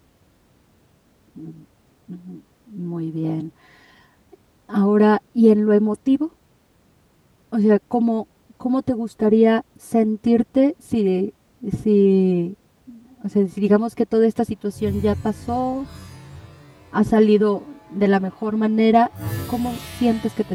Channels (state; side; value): identical; both; correlation 1.00